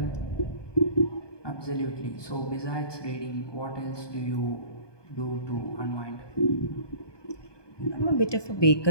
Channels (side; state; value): right; late; 1.2 ms